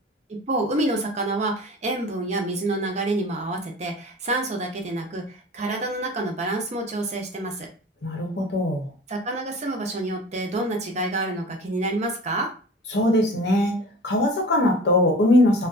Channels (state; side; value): normal; both; correlation 0.40